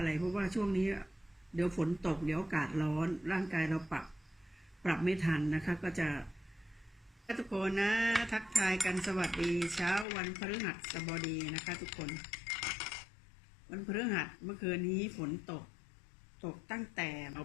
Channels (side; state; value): right; drops out; at 10.1 s